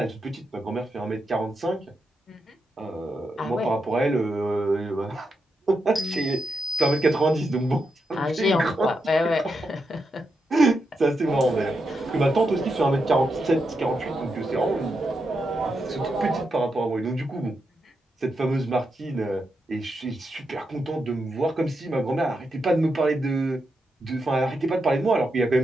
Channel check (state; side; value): normal; both; correlation 0.85